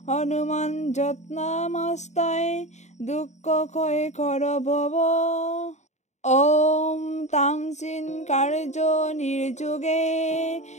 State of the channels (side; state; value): right; late; 0.34 ms